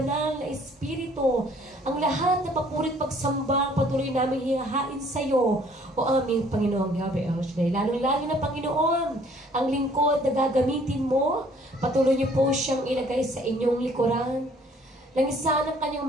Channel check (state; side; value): normal; both; correlation 0.59